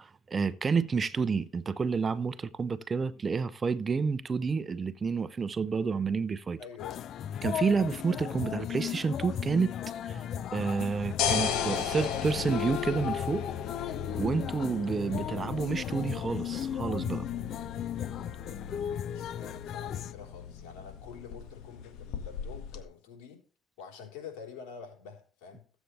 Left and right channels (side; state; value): both; normal; correlation 0.73